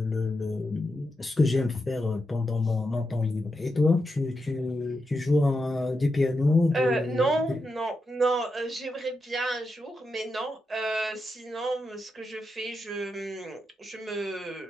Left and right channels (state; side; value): normal; both; correlation 0.86